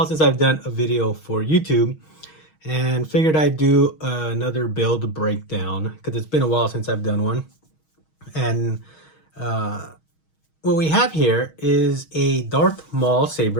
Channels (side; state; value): right; late; 6.3 ms